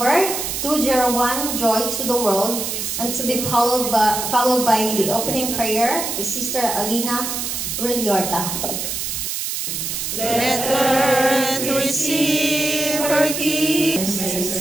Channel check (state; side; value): noise; right; hiss, 3 dB below the sound